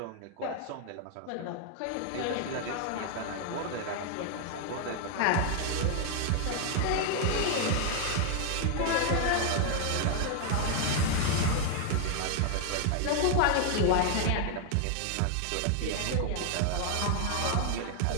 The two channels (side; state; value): both; different; correlation 0.00